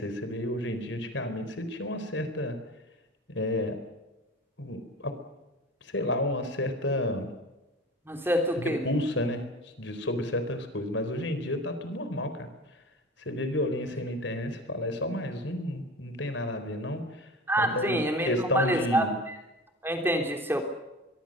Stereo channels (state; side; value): normal; both; correlation 0.35